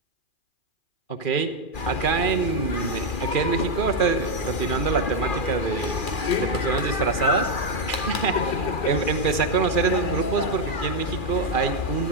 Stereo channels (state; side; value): late; right; 2.4 ms